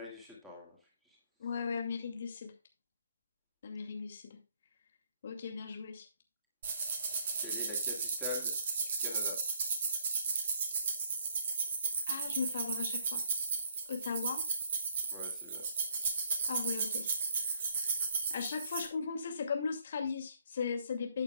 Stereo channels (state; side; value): inverted; both; correlation -0.67